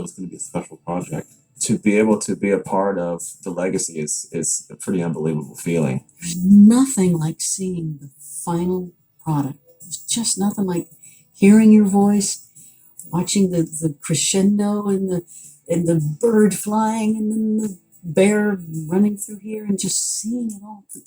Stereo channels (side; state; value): both; identical; correlation 1.00